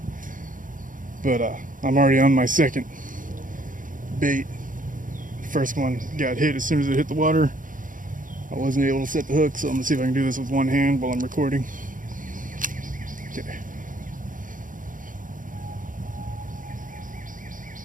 but I'm already on my second bait. First one got hit as soon as it hit the water. I wasn't able to set the hook, so I'm gonna see if I can do this with one hand while I'm recording. Okay.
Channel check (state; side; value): late; left; 0.39 ms